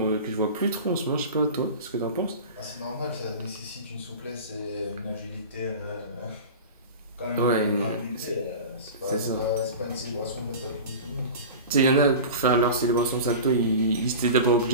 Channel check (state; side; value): inverted; both; correlation -0.33